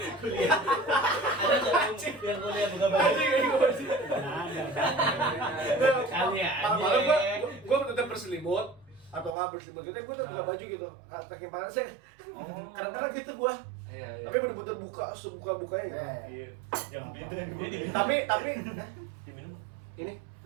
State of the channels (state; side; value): drops out; left; at 9.3 s